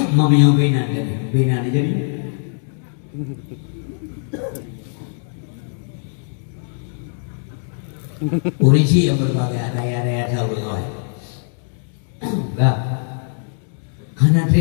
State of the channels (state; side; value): silent; right; digital silence